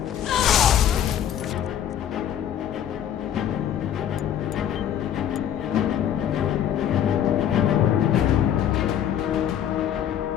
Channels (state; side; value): quieter; right; 10.0 dB